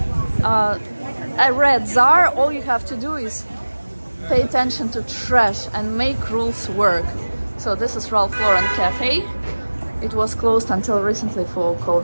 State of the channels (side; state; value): both; inverted; correlation -1.00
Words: a rat czar, all you have to do is pay attention to trash and make rules work. So this is Ralph Lauren Cafe. It was closed until recently for